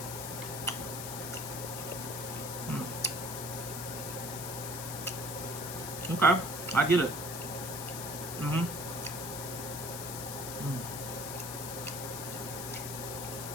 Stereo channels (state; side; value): noise; left; hiss, 6 dB below the sound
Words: Okay, I get it.